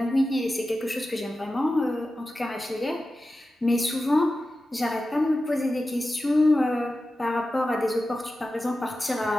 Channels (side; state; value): both; normal; correlation 0.93